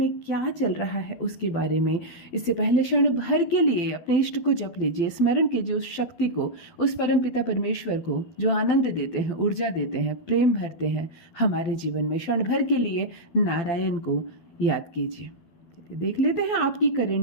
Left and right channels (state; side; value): late; right; 12 ms